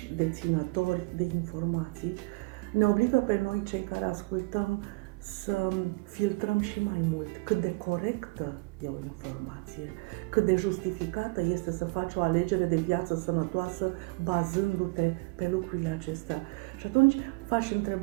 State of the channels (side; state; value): left; quieter; 25.3 dB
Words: deținători de informații, ne obligă pe noi, cei care ascultăm, să filtrăm și mai mult cât de corectă e o informație, cât de justificată este să faci o alegere de viață sănătoasă bazându-te pe lucrurile acestea. Și atunci v-aș